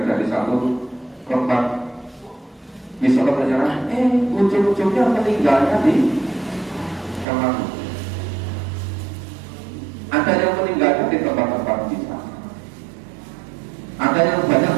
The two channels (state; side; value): drops out; left; at 7.2 s